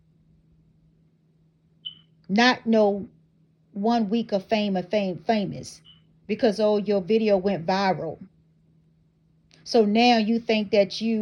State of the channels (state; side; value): identical; both; correlation 1.00